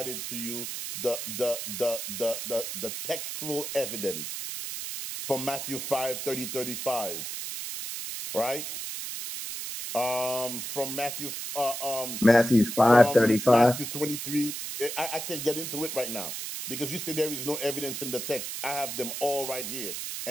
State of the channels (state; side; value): noise; right; hiss, 6 dB below the sound